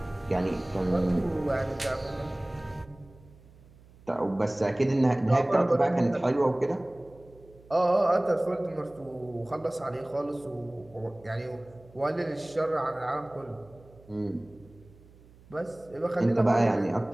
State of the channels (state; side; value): noise; right; hum, 25 dB below the sound